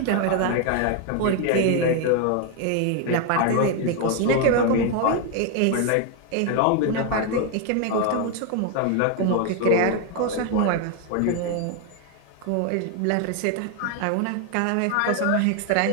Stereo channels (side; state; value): both; different; correlation 0.01